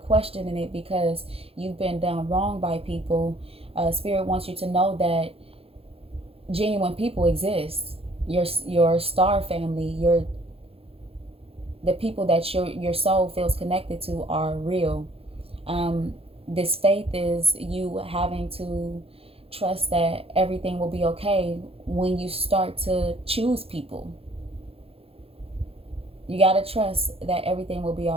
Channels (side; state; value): left; late; 0.28 ms